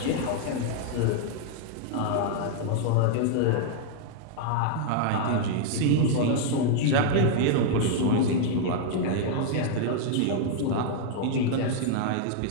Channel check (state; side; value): different; both; correlation 0.00